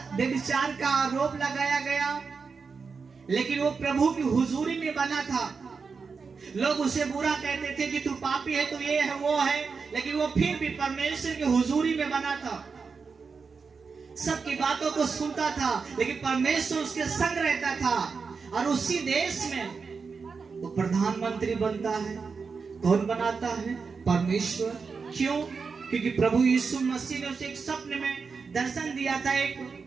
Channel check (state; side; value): quieter; left; 5.1 dB